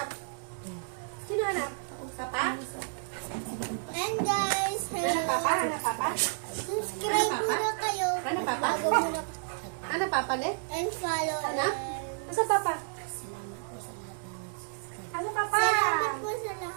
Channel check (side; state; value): left; silent; 57 dB below the other